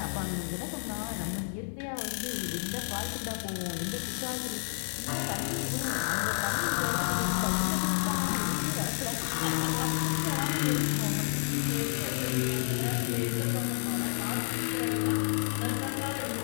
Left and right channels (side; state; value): right; silent; 57 dB below the other